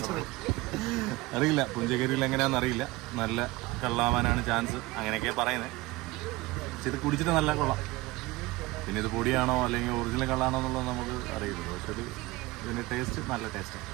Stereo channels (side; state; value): left; quieter; 20.9 dB